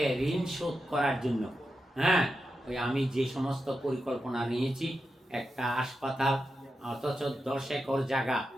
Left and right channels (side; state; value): both; normal; correlation 0.89